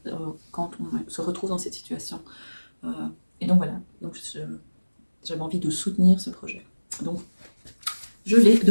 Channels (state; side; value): inverted; both; correlation -1.00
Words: quand on se retrouve dans cette situation. Et donc voilà, donc j'avais envie de soutenir ce projet. Donc, je l'ai